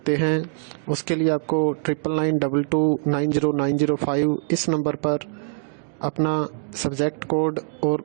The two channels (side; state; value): left; silent; digital silence